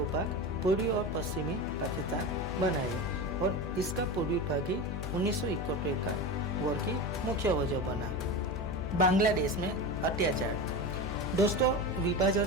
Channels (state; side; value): noise; left; hum, 5 dB below the sound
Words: भाग पूर्वी और पश्चिमी पाकिस्तान बनाए, और इसका पूर्वी भाग ही 1971 का वॉर की मुख्य वजह बना। बांग्लादेश में अत्याचार। दोस्तों,